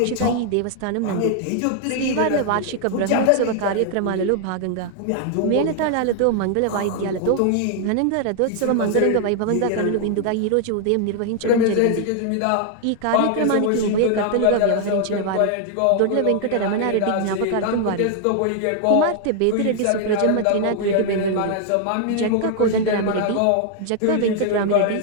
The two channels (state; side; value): different; both; correlation 0.00